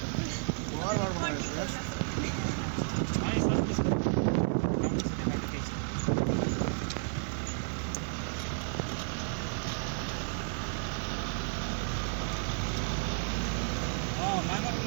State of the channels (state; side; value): silent; left; 55 dB below the other